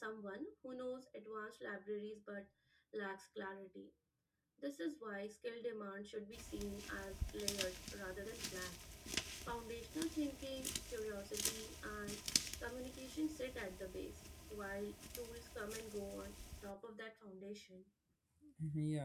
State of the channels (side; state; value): both; identical; correlation 1.00